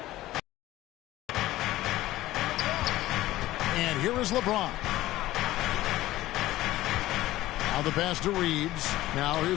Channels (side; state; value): right; quieter; 16.0 dB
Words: And And here is LeBron. Now the pass to Reeves. Now